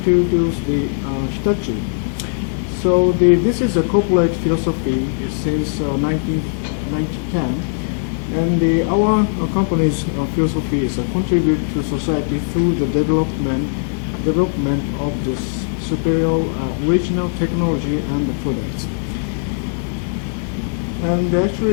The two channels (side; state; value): right; silent; digital silence